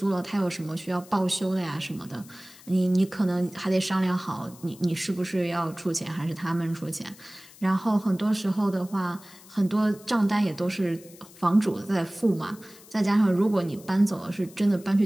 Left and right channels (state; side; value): noise; left; hiss, 22 dB below the sound